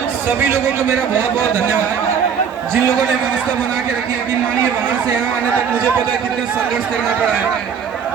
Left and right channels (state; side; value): quieter; left; 7.1 dB